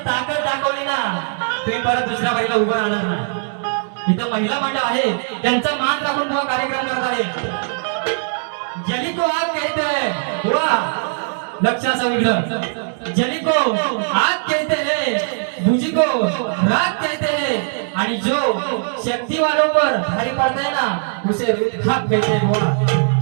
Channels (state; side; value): silent; left; digital silence